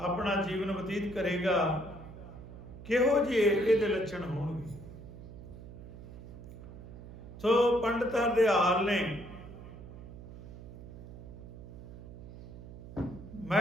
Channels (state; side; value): noise; right; hum, 14 dB below the sound